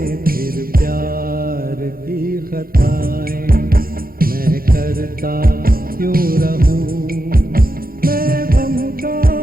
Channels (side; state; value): left; late; 0.42 ms